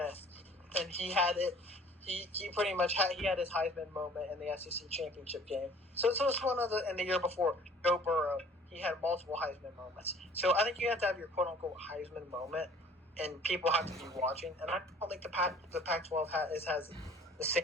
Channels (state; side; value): normal; both; correlation 0.52